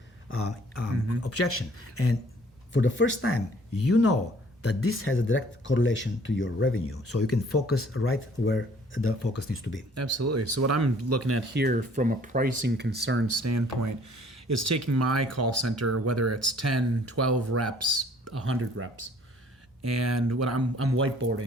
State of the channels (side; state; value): both; normal; correlation 0.57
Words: objection. And for the first time, you know that this has a direct correlation to your revenue. So you can focus right where the focus needs to be. Absolutely. So what I'm looking at here from a pricing concern standpoint is taking my call center, whether it's 10, 12 reps, 100 reps, and when I'm